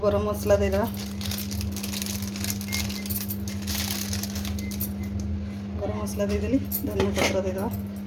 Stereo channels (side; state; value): both; identical; correlation 1.00